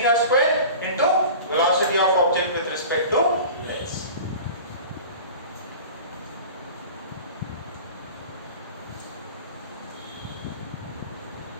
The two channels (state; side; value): inverted; both; correlation -0.37